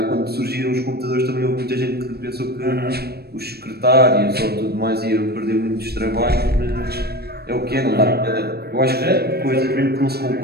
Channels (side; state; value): left; late; 0.46 ms